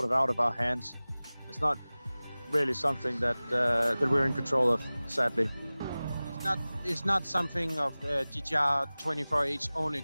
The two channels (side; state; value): both; inverted; correlation -0.98